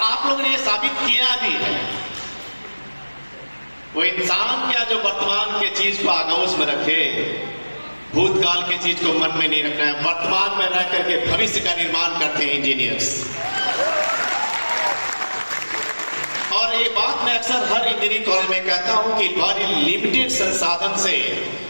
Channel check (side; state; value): both; inverted; correlation -1.00